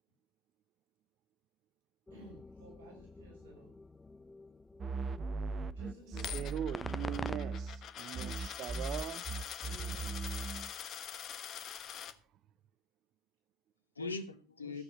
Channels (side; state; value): both; normal; correlation 0.60